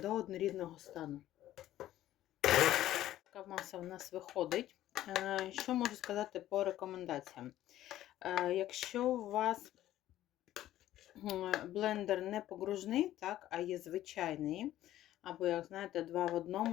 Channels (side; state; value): right; quieter; 13.6 dB